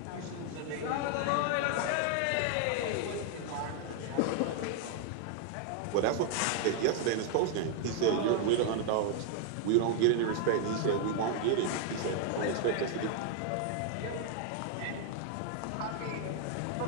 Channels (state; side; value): different; both; correlation 0.00